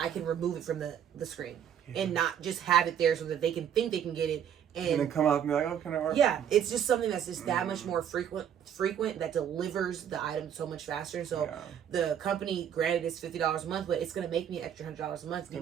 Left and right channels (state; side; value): quieter; left; 9.1 dB